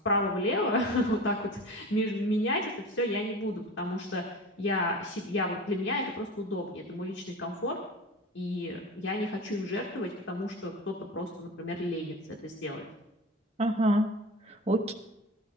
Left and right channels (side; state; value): both; normal; correlation 0.32